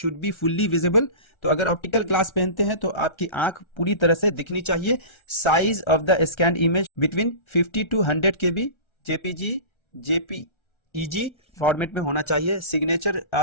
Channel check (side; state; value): right; late; 1.3 ms